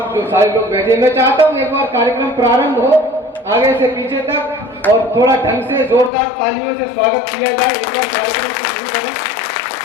जो सारे लोग बैठे, मैं चाहता हूँ एक बार कार्यक्रम प्रारंभ हो आगे से पीछे तक और थोड़ा ढंग से जोरदार तालियों से स्वागत किया जाए। एक बार कार्यक्रम को शुरू करें।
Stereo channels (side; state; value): right; drops out; at 6.1 s